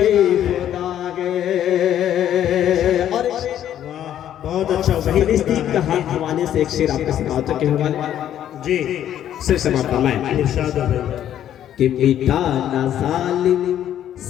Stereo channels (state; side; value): quieter; right; 10.9 dB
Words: खुदा है। और बहुत अच्छा वही फिलिस्तीन का हवाले से एक शेर आपके समाज के हवाले जी सिर समाप्त फरमाएं इरशाद है कि मिटा ना जालिम